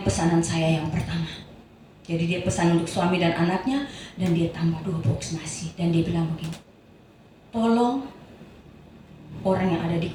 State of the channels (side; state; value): both; identical; correlation 1.00